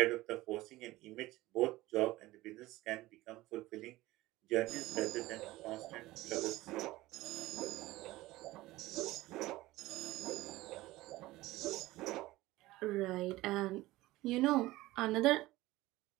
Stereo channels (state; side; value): quieter; left; 18.2 dB